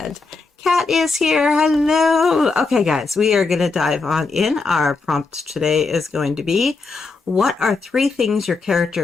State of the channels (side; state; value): right; quieter; 4.0 dB